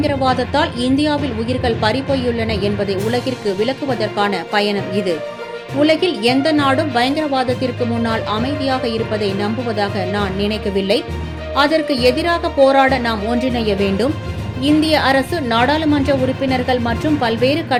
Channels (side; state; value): both; identical; correlation 1.00